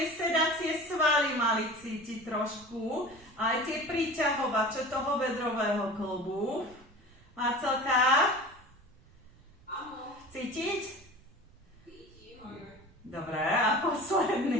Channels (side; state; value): right; noise; rumble, 26 dB below the sound